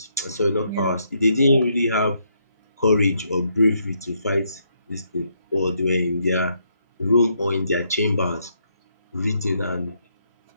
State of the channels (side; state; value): both; inverted; correlation -0.75